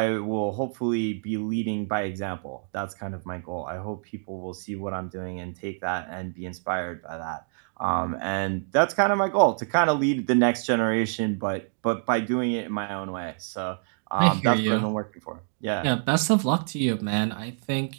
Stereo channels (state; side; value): silent; left; digital silence